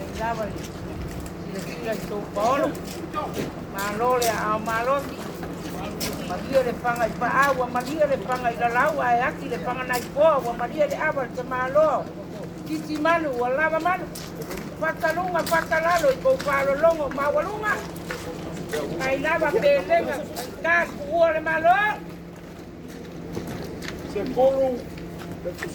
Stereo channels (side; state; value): both; identical; correlation 1.00